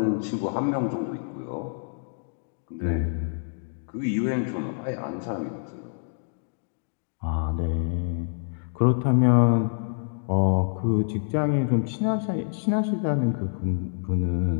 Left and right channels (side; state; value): right; silent; digital silence